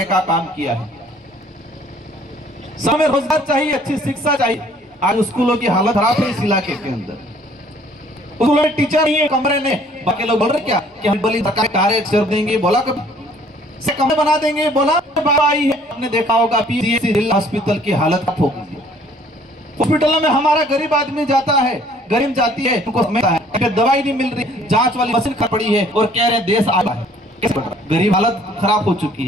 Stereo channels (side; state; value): both; normal; correlation 0.58